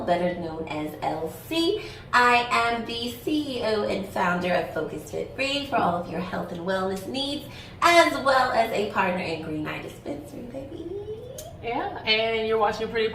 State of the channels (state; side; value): identical; both; correlation 1.00